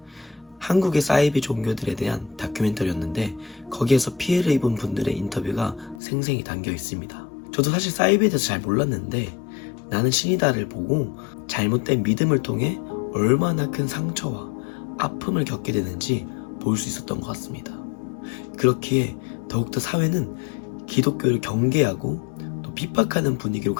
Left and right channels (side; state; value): right; drops out; at 6.0 s